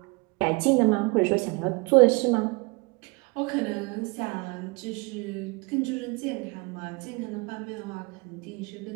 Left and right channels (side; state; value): left; quieter; 28.4 dB